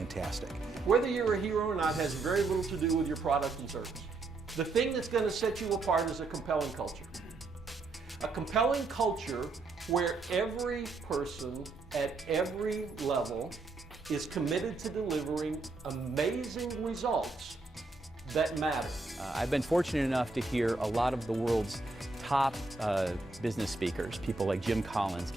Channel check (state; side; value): quieter; left; 3.6 dB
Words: Whether you're a hero or not has very little to do with your product and service. The thing that's going to set you apart is a compelling culture. A compelling culture where every person at every level is committed to delivering amazing results that matter. I've been fortunate enough to hear a lot of the world's top business speakers, people like Jim Collins,